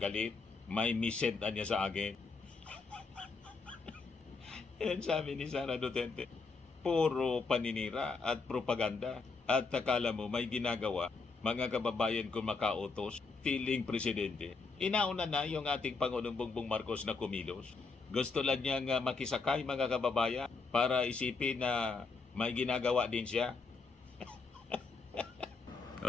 May misent niya sa akin. Yan sabi ni Sara Duterte. Puro paninira at propaganda. At akala mo may ginagawa, mga kababayan kung makautos, feeling presidente. Inauna na yung ating Pangulong Bongbong Marcos na kumilos. Gusto lang niyang makisakay mga kababayan para isipin na may ginagawa din siya.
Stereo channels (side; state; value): right; quieter; 4.3 dB